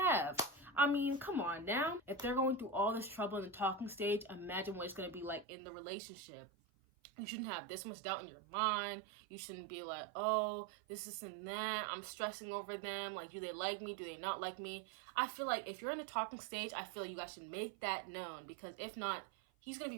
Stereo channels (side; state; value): left; drops out; at 5.5 s